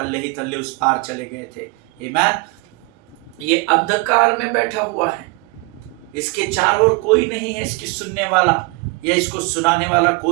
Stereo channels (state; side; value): quieter; left; 26.6 dB